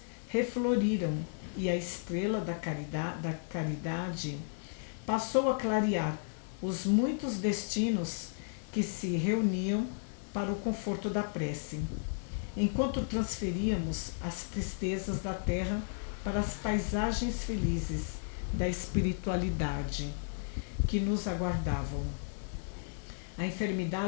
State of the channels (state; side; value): silent; right; digital silence